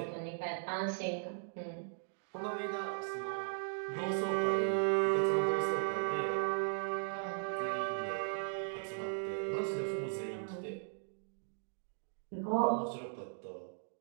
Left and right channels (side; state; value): left; silent; digital silence